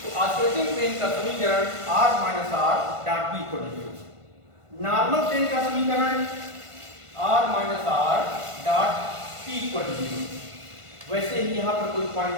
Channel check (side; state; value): left; late; 1.5 ms